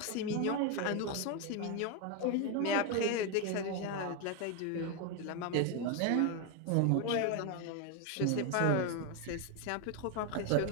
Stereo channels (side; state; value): both; different; correlation 0.01